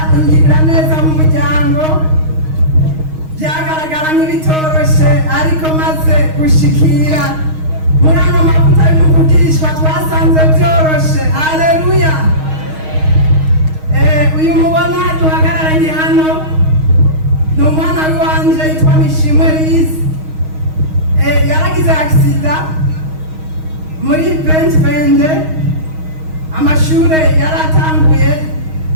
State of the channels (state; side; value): late; left; 6.4 ms